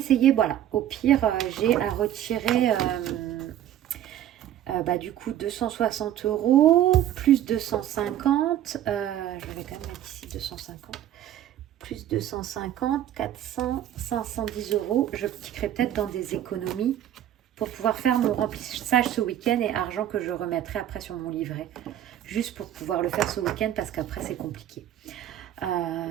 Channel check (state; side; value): quieter; left; 11.6 dB